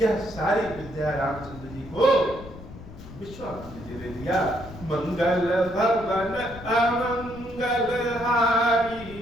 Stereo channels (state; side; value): noise; left; rumble, 15 dB below the sound